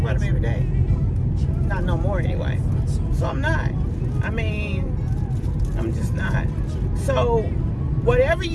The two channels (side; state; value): both; identical; correlation 1.00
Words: them every day. Not no more anyway. So I'm not. I mean, I'm just not. So whatever